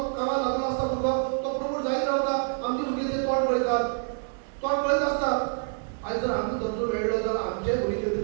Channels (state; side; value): silent; left; 58 dB below the other